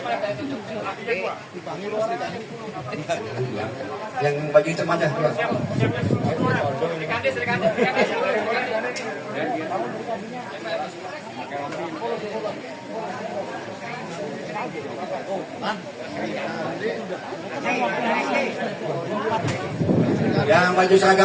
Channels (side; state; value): both; identical; correlation 1.00